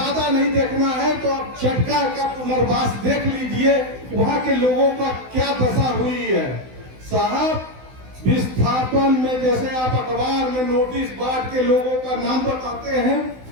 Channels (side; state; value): left; late; 16 ms